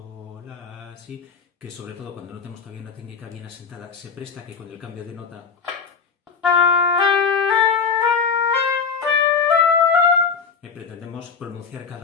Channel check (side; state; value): right; quieter; 5.7 dB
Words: la, si, que sobre todo cuando no tenemos todavía una técnica bien asentada, se presta que con el cambio de nota pretendemos pronunciar